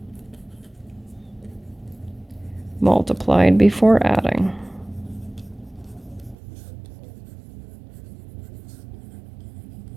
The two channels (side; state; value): left; drops out; at 6.4 s